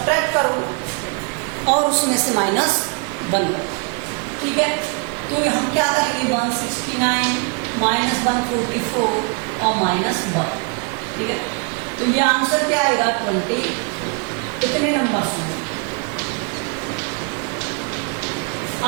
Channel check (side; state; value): left; quieter; 35.4 dB